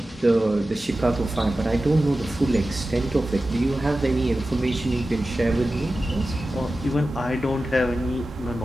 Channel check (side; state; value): both; normal; correlation 0.94